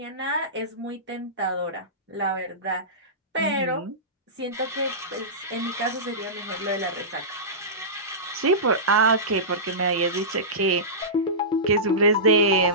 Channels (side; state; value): both; normal; correlation -0.19